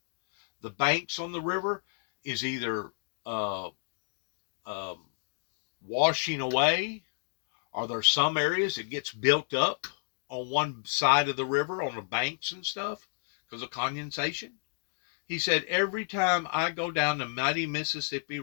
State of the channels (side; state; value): right; silent; digital silence